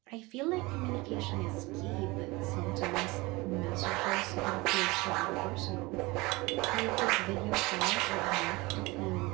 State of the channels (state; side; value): quieter; left; 23.1 dB